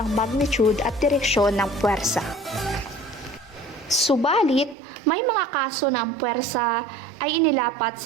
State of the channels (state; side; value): drops out; left; at 4.8 s